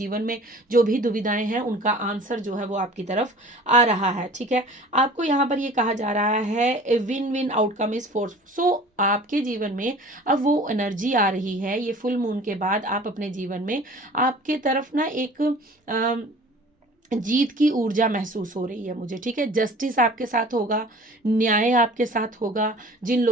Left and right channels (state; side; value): normal; both; correlation 0.45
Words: में जो भी दुविधाएं हैं उनका आंसर जो है वो आपकी तरफ आ रहा है, ठीक है। आपको यहाँ पर ये कहा जा रहा है win win outcome is force. So आपके जीवन में अब वो एनर्जी आ रही है, ये फुल मून के बाद आप अपने जीवन में आपके तरफ ना एक जीत की ऊर्जा महसूस हो रही है मुझे, ठीक है। जस्टिस आपके साथ होगा, न्याय आपके साथ होगा। जिन